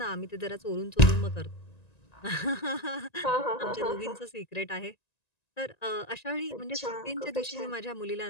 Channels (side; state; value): right; late; 1.9 ms